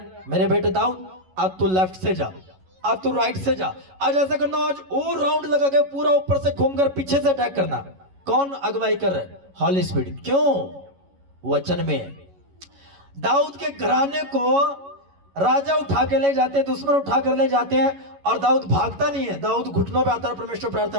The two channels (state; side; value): late; left; 11 ms